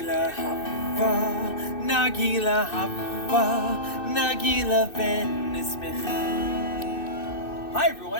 Hava, Nagila Hava, Nagila Ben Ismecha. Hi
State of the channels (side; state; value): right; late; 2.6 ms